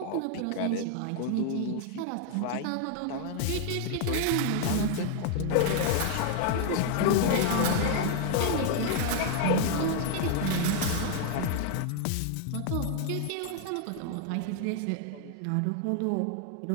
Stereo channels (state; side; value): different; both; correlation 0.00